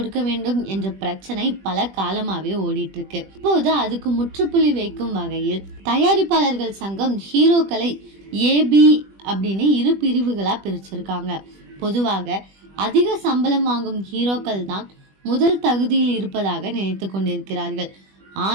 வேண்டும் என்ற பிரச்சனை பல காலமாவே ஓடிட்டு இருக்கு. இப்போது அதுக்கு முற்றுப்புள்ளி வைக்கும் வகையில் தயாரிப்பாளர்கள் சங்கம் ஹீரோக்களை ஏபி அப்படின்னு 2 பிரிவுகளா பிரிச்சிருக்காங்க. பொதுவாக அதிக சம்பளம் வாங்கும் ஹீரோக்கள் தான் முதல் தகுதியில் இருப்பதாக நினைத்து கொண்டிருக்கிறார்கள்.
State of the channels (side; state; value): left; late; 20 ms